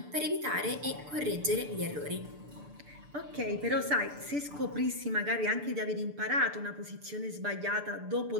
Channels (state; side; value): late; left; 6.8 ms